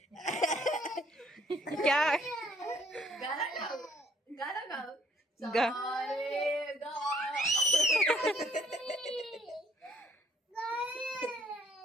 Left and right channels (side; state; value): both; normal; correlation 0.63